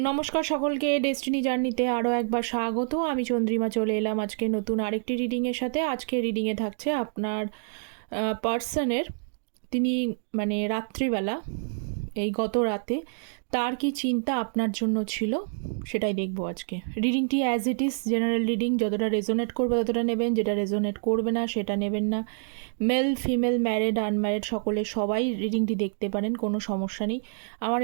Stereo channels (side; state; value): left; silent; digital silence